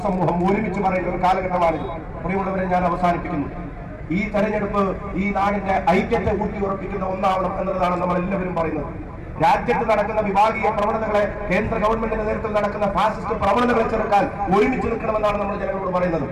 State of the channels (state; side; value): identical; both; correlation 1.00